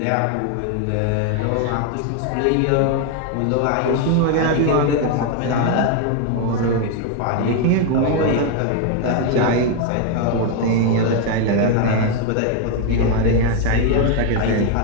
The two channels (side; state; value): both; different; correlation 0.01